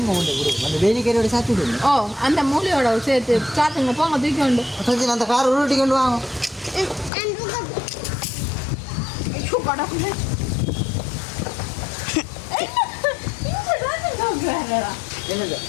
அந்த வேலிக்கரையோட சாத்தி விடுங்க. அந்த மூலையோட சேர்த்து சாத்துங்க. போங்க தூக்கி கொண்டு சச்சின் அந்த கார் உருட்டி கொண்டு வாங்க. என்னது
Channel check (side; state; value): right; drops out; at 7.1 s